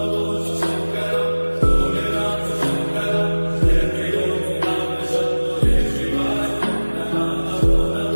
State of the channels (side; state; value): both; inverted; correlation -1.00